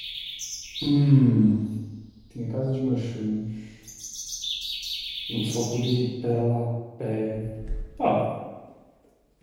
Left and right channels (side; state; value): both; identical; correlation 1.00